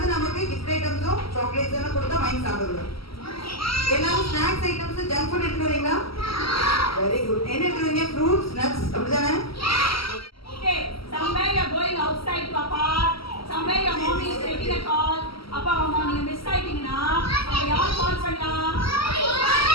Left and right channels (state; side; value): late; right; 0.75 ms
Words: நமக்கு கிஃப்ட் ஐட்டம்ஸும் சாக்லேட்ஸ் எல்லாம் கொடுத்தா வாங்கி சாப்பிடுவோம். எல்லாரும் ஸ்நாக்ஸ் ஐட்டம்ஸ் ஜங்க் ஃபுட் எடுத்து வரீங்களா? Very good. என்ன எடுத்து வரீங்க? ஃப்ரூட்ஸ், நட்ஸ் அப்படிதானே? Okay, somewhere you are going outside to a park, somewhere your mommy is taking a call. அப்பா அம்மா நீங்க மிஸ் ஆயிட்டீங்கன்னா அப்ப யார் கால் பண்ணலாம்?